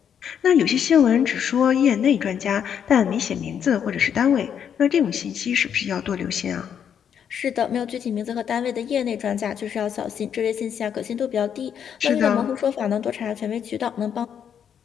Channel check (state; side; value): quieter; right; 8.3 dB